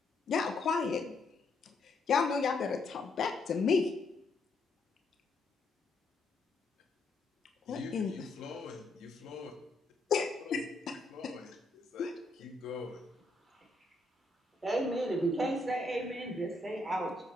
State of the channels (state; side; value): quieter; right; 3.0 dB